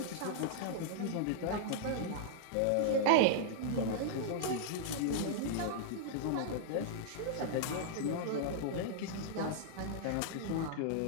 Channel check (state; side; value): different; both; correlation -0.01